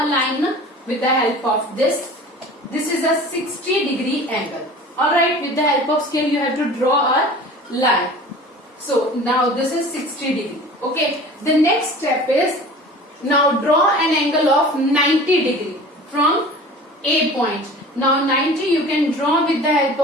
a line with the help of this. This is a 60 degree angle. Alright, with the help of scale you have to draw a line. So now this is 60 degree. Okay, the next step is now draw an angle of 90 degree from A point. Now 90 you can draw with the help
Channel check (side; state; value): both; normal; correlation 0.41